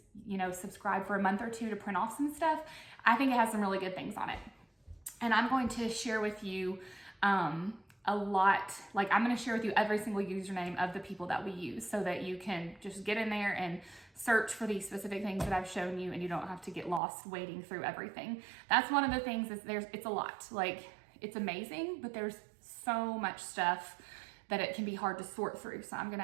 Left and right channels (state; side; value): drops out; left; at 17.0 s